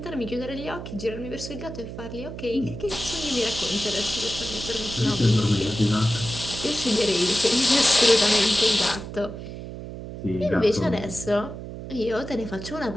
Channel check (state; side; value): noise; right; hum, 10 dB below the sound